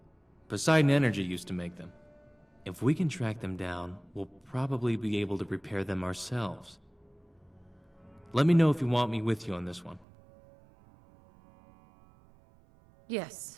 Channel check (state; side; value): drops out; left; at 10.1 s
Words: Poseidon Energy used to make them. If we can track them down, we'll probably be able to repair them ourselves. Let me know if you want me with you on this one.